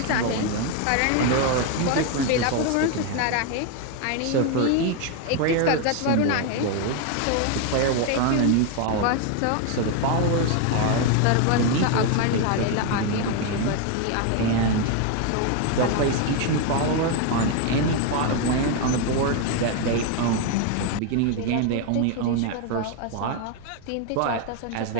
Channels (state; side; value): different; both; correlation 0.01